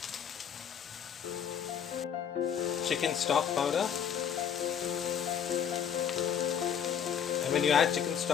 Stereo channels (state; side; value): quieter; right; 8.3 dB